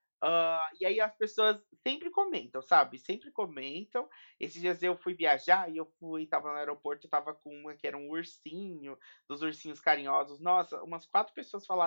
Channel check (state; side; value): inverted; both; correlation -1.00